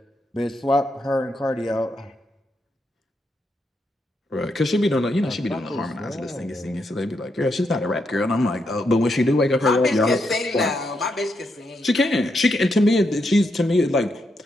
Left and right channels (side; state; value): both; normal; correlation 0.81